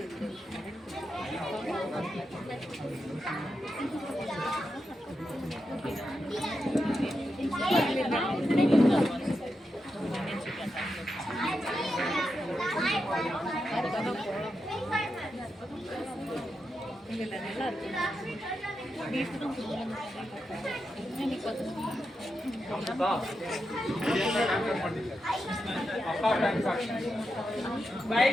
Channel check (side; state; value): both; normal; correlation 0.87